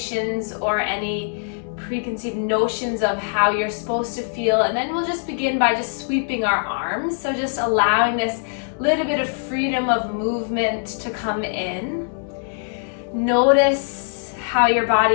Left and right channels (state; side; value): silent; right; digital silence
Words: or any preconceived notions of how you're supposed to feel. And then we'll just begin by just sweeping our arms. So just allowing this little bit of freedom of movement to come in. Notice how your